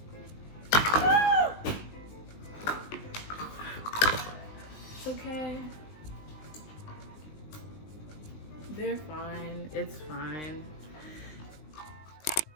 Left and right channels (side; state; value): right; late; 19 ms